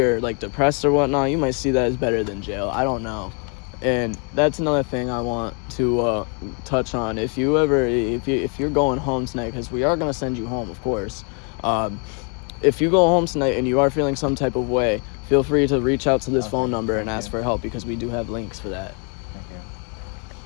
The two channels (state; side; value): quieter; right; 37.8 dB